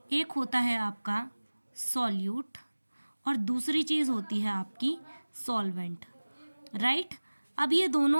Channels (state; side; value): inverted; both; correlation -1.00